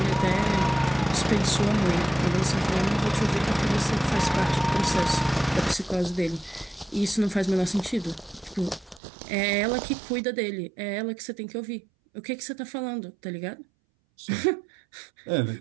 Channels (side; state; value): left; drops out; at 9.0 s